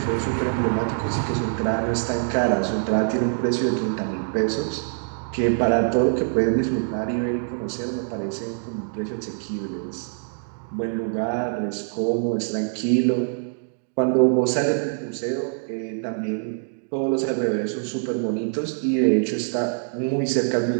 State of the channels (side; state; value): left; silent; digital silence